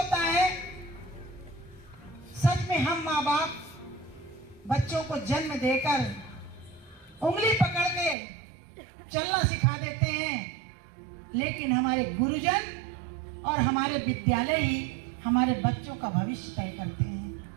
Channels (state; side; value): drops out; left; at 8.2 s